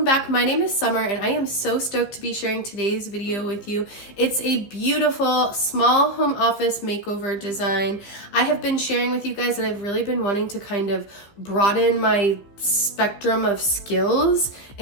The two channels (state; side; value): late; right; 15 ms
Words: back. My name is Summer and I am so stoked to be sharing today's video with you. It's a beautiful small home office makeover design. I have been sharing with you guys that I've really been wanting to kind of broaden my spectrum of skills,